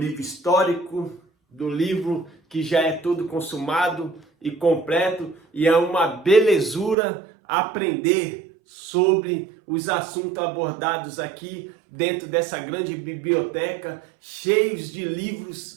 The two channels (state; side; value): drops out; left; at 7.0 s